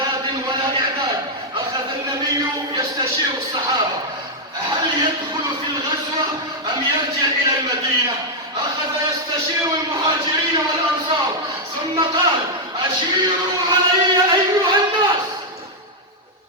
ولا إعداد. أخذ النبي يستشير الصحابة هل يدخل في الغزوة أم يرجع إلى المدينة. أخذ يستشير المهاجرين والأنصار ثم قال: أشيروا علي أيها الناس.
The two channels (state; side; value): normal; both; correlation -0.02